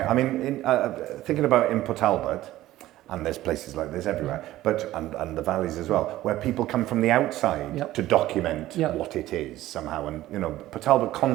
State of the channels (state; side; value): quieter; left; 15.3 dB